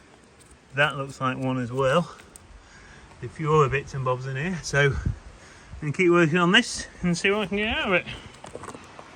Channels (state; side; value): identical; both; correlation 1.00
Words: That looks like one as well. A few other bits and bobs in here. So I'm going to keep working on this and see what I can get out of it.